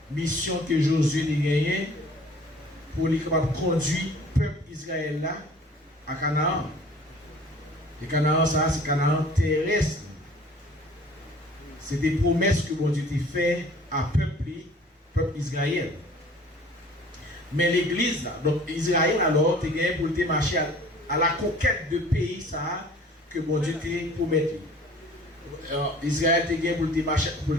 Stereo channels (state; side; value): normal; both; correlation 0.49